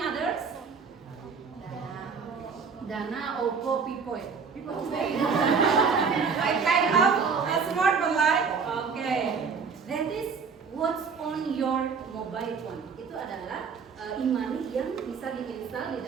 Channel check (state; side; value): quieter; left; 5.5 dB